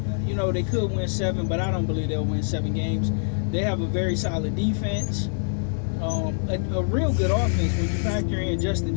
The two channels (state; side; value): silent; right; 62 dB below the other